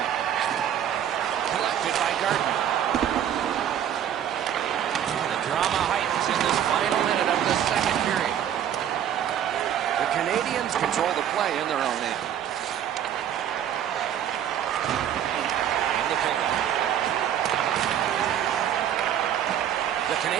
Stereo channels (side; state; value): left; quieter; 10.0 dB